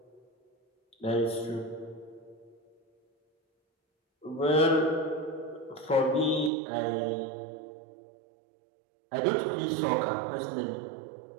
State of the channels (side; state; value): left; drops out; at 6.5 s